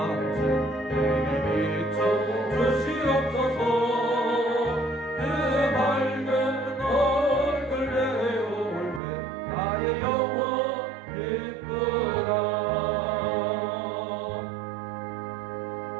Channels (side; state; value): left; drops out; at 9.0 s